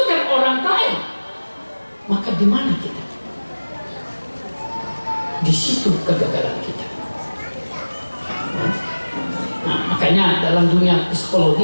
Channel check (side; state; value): both; inverted; correlation -1.00